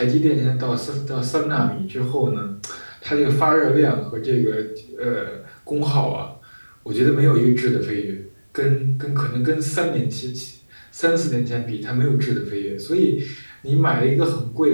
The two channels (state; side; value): inverted; both; correlation -1.00